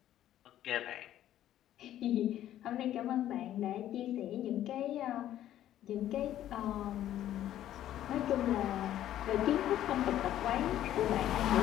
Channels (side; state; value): right; quieter; 12.2 dB